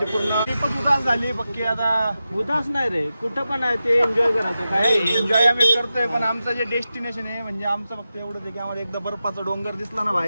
पूर्ण ट्रिपच उदास झाली पक्की. आता उदास नाही रे, कुठं पण आहे ते एन्जॉय करायचं. काय एन्जॉय आम्ही करतोय, पण आमचं जे डेस्टिनेशन आहे म्हणजे आमचं फक्त एवढंच आहे की आम्हाला एकदा बर्फाचा डोंगर दिसला ना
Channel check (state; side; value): inverted; both; correlation -0.92